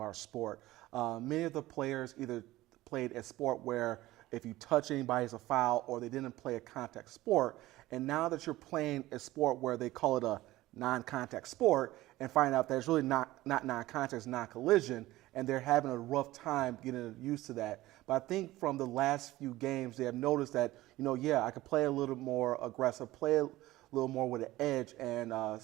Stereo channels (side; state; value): left; quieter; 17.1 dB